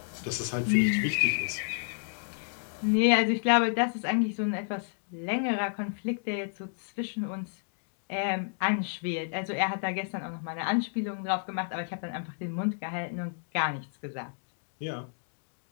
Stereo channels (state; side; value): silent; right; digital silence